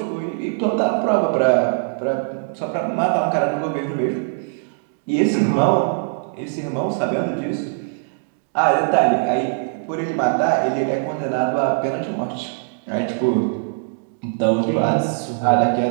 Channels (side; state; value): left; silent; digital silence